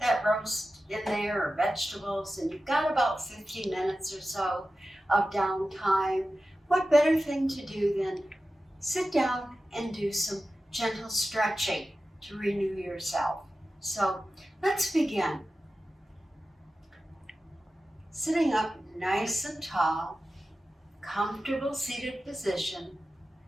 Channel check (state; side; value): normal; both; correlation 0.93